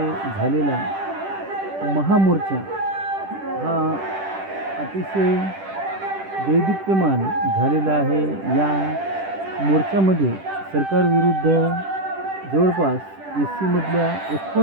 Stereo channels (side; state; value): left; late; 10 ms